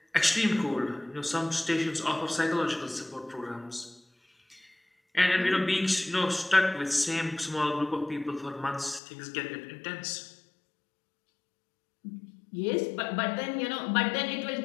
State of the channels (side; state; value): right; drops out; at 9.0 s